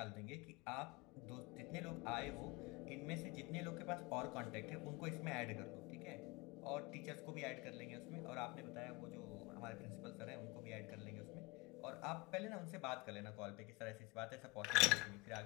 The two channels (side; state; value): right; quieter; 24.0 dB